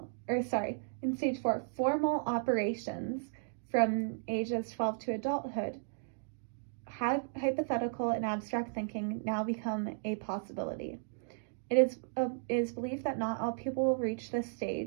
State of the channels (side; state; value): left; silent; digital silence